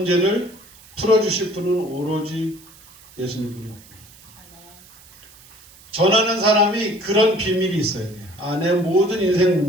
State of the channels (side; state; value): right; noise; hiss, 24 dB below the sound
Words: 풀어주실 분은 오로지 예수님뿐이었구나. 전하는 사람이 그런 비밀이 있어야 돼요. 내 모든